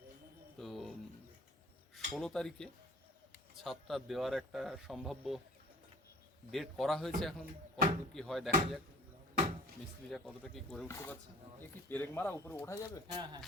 তো 16 তারিখে ছাদটা দেওয়ার একটা সম্ভাব্য ডেট করা হয়েছে। এখন কতটুকু কি হয় দেখা যাক, মিস্ত্রিরা কতটা কি করে উঠতে পারছে। এ কি পেরেক মারা উপরে ওঠা যাবে? হ্যাঁ হ্যাঁ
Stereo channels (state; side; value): normal; both; correlation 0.48